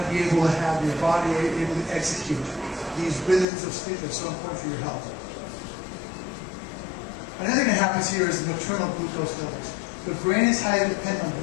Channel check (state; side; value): drops out; right; at 3.5 s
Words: to be able to have your body able to execute these rhythms of sleep that are so important for your health. Another thing that happens here is nocturnal glucose levels. The brain is highly dependent on